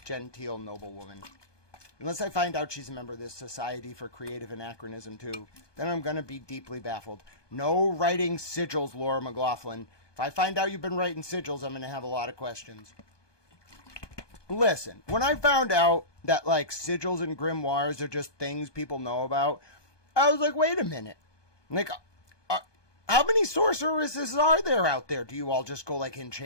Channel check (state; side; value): late; right; 1.2 ms